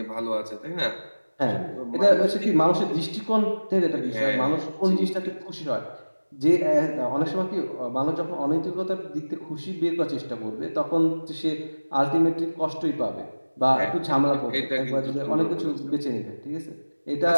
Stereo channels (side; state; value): both; inverted; correlation -1.00